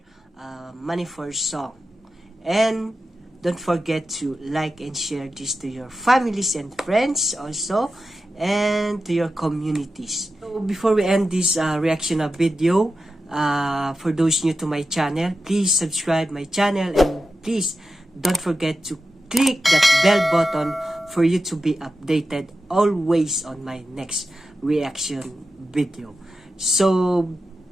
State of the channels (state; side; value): normal; both; correlation 0.91